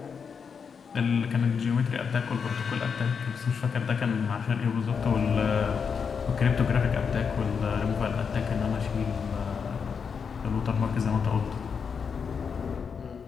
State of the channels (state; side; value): quieter; right; 6.2 dB